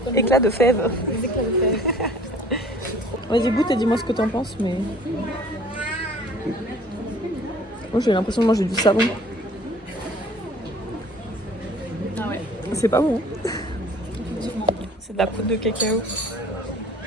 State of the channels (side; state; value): both; normal; correlation 0.51